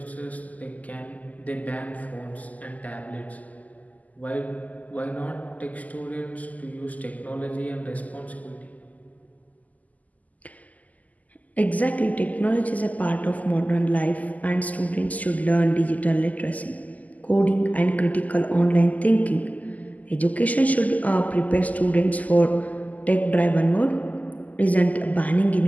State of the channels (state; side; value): late; right; 0.077 ms